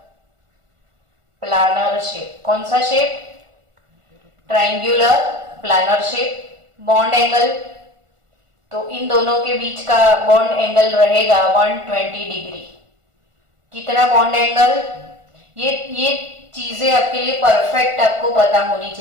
प्लानर शेप। कौन सा shape? Triangular planar shape. Bond angle तो इन दोनों के बीच का बॉन्ड एंगल रहेगा 120 डिग्री। कितना बॉन्ड एंगल? ये चीजें आपके लिए परफेक्ट आपको पता होनी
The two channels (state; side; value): late; left; 1.4 ms